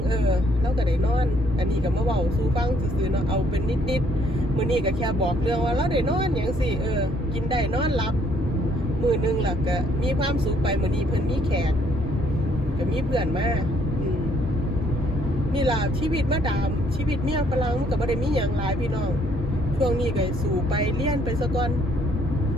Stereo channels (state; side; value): normal; both; correlation 0.66